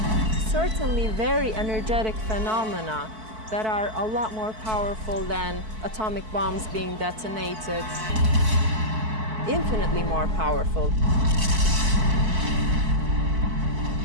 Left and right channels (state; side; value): late; left; 4.6 ms